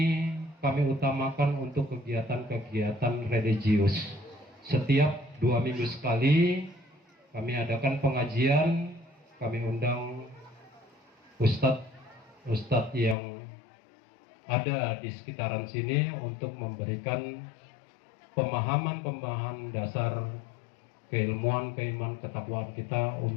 kami utamakan untuk kegiatan-kegiatan religius. Setiap 2 minggu sekali kami adakan pengajian, kami undang ustadz yang ada di sekitaran sini untuk memberikan pemahaman dasar keilmuan, keimanan, ketakwaan kita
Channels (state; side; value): drops out; right; at 13.2 s